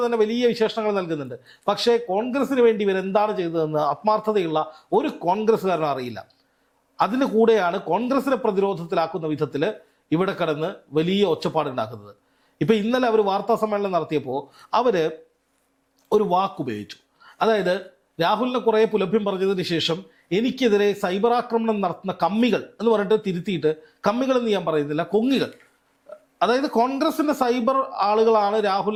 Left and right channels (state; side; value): identical; both; correlation 1.00